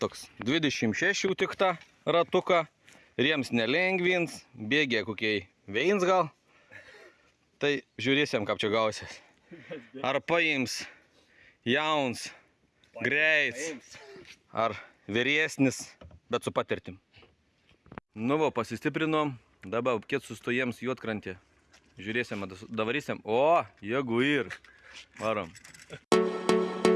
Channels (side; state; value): both; identical; correlation 1.00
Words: 26 tik tą ratuką, riems nelengvins, bėgė kokiai veins gal. Tai žiūrėsim, kaip čia gausis. Ar paims jauns, greits, ar vyresnis, bet su patirtim. Nu va, pasistiprinom, dabar kiek sustojams Juodkrantė. Žiūrėsim, davarysim. O, jeigu ir. Varom.